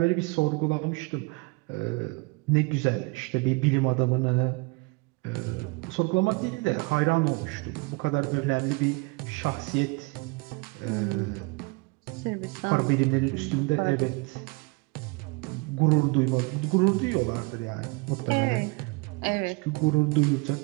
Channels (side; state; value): left; quieter; 28.0 dB